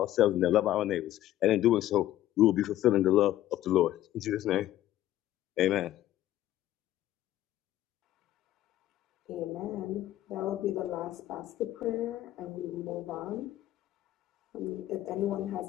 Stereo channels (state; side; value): quieter; right; 13.6 dB